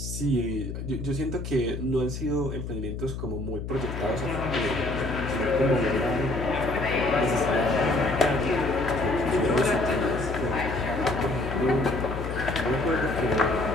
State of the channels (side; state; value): left; noise; hum, 6 dB below the sound